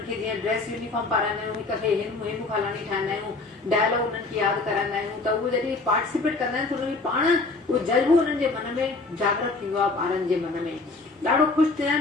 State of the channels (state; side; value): quieter; right; 3.6 dB